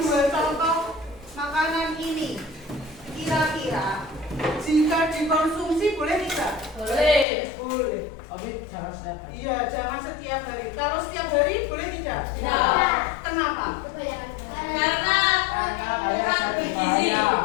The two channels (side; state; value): right; drops out; at 7.2 s